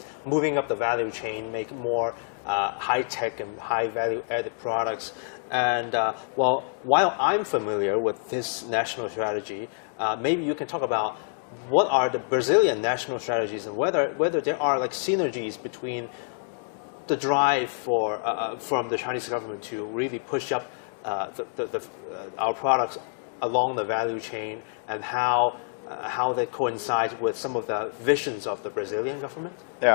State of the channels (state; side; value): silent; right; digital silence